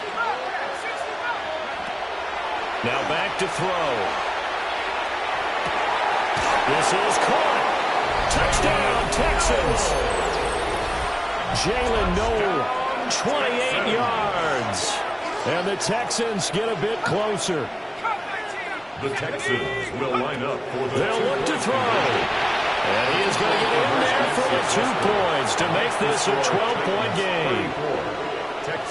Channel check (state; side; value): identical; both; correlation 1.00